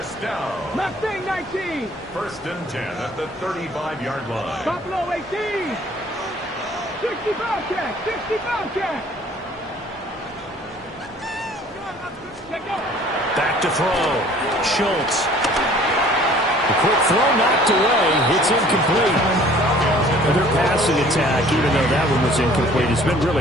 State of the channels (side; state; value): both; normal; correlation 0.53